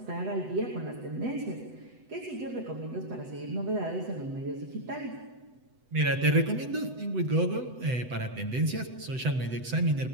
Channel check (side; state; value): left; late; 7.9 ms